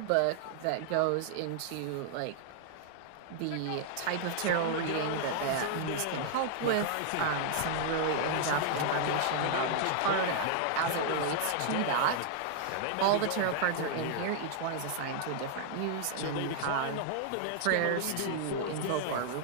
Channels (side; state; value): both; different; correlation 0.00